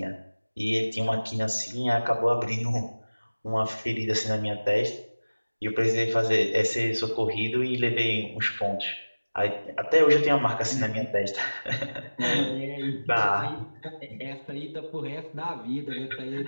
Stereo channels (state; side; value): inverted; both; correlation -1.00